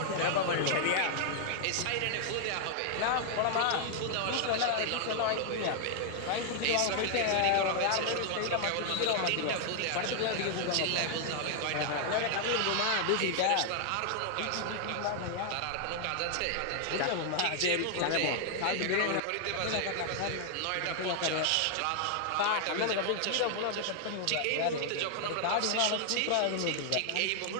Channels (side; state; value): both; different; correlation 0.00